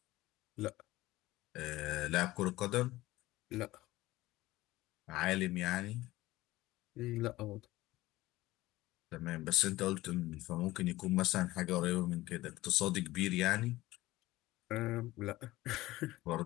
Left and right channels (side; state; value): right; quieter; 17.8 dB